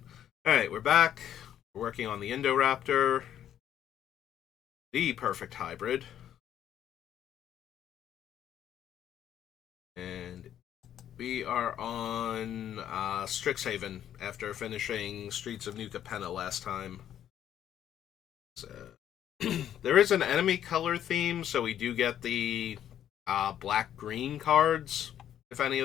Alright, we're back. We're working on the Indoraptor. The perfect hybrid. And we are on Strixhaven after finishing Streets of New Capenna last time. So, there is an enemy color theme, so we do get the black-green cards, if any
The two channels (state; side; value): quieter; right; 10.5 dB